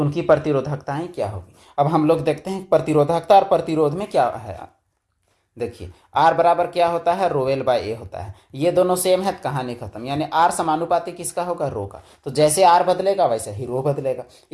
उनकी प्रतिरोधकताएं क्या होगी। अब हम लोग देखते हैं प्रतिरोधकता और प्रतिरोध में क्या है। देखिए आर बराबर क्या होता है, रोएल बाय ए होता है। ये दोनों सेम है, कहानी खत्म, यानी आर समानुपाती किसका होगा, रो का। तो जैसे आर बदलेगा वैसे ही रो बदलेगा।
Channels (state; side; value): identical; both; correlation 1.00